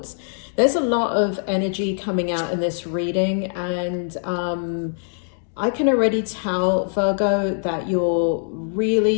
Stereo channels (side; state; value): right; silent; digital silence